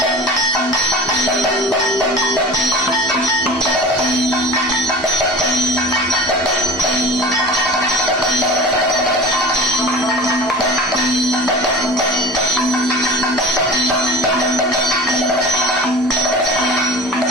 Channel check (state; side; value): normal; both; correlation 0.35